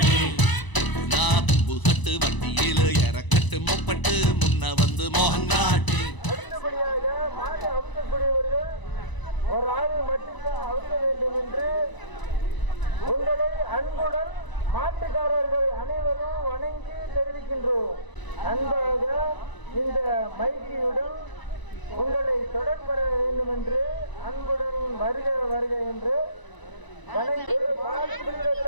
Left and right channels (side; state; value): right; late; 1.0 ms